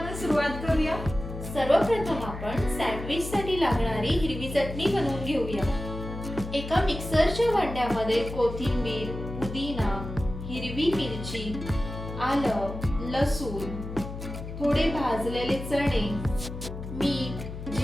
सुरुवात करूया। सर्वप्रथम आपण सँडविचसाठी लागणारी हिरवी चटणी बनवून घेऊया। एका मिक्सरच्या भांड्यामध्ये कोथिंबीर, पुदिना, हिरवी मिरची, आलं, लसूण, थोडे भाजलेले चणे, मीठ,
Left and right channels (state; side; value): noise; left; hum, 9 dB below the sound